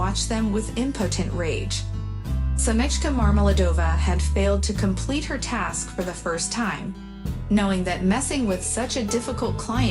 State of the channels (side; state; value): both; identical; correlation 1.00